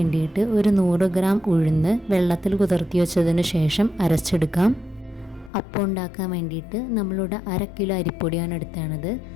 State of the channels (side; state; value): right; drops out; at 5.5 s